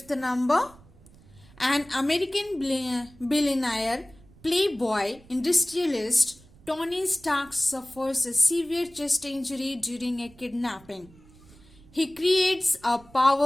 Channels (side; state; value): right; noise; rumble, 25 dB below the sound